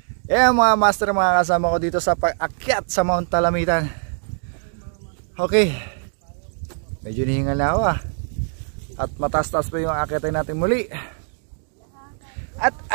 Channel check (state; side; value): silent; left; 64 dB below the other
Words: Yan mga master, mga kasama ko dito sa pag-akyat sa Mount Talamitan. Okay. Medyo nihingal na ako ah. At mataas-taas pa yung akyatin natin muli. At